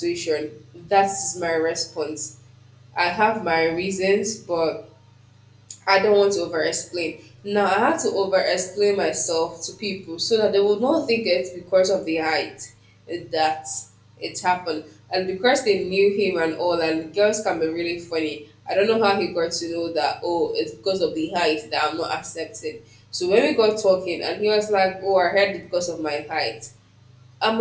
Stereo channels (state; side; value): identical; both; correlation 1.00